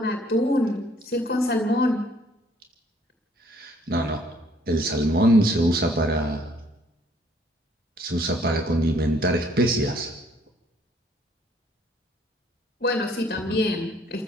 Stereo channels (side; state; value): both; normal; correlation 0.62